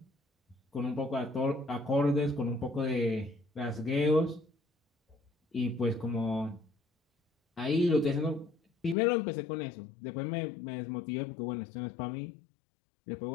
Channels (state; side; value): drops out; right; at 9.0 s